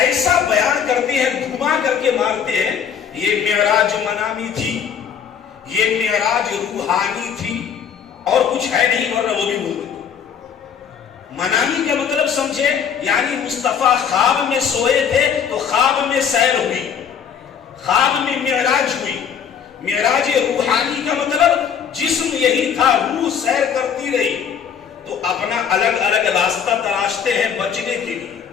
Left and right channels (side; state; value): right; quieter; 7.7 dB